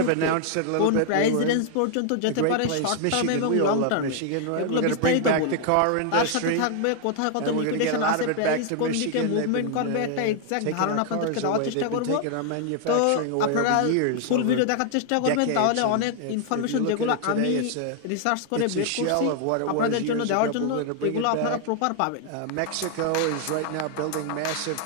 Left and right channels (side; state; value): both; different; correlation 0.00